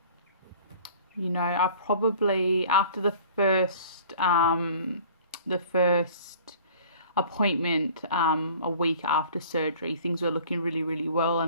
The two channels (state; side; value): inverted; both; correlation -0.47